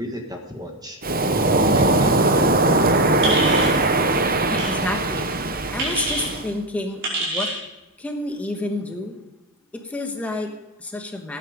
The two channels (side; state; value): both; normal; correlation 0.09